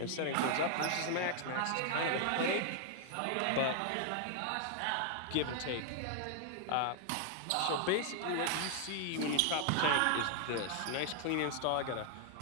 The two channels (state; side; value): different; both; correlation 0.00